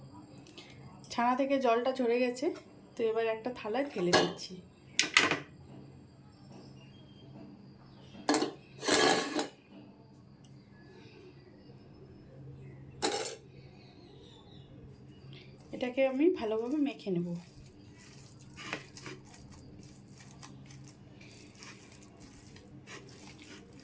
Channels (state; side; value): identical; both; correlation 1.00